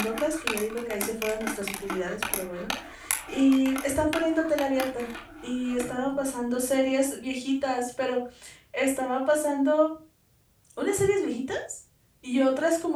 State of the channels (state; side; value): identical; both; correlation 1.00